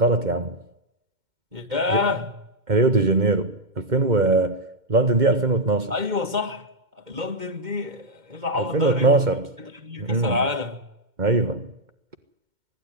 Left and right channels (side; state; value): left; late; 2.1 ms